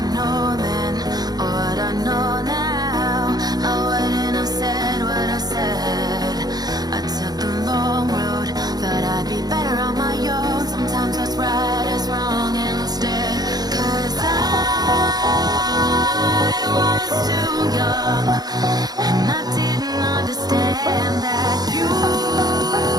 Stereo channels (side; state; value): left; late; 0.19 ms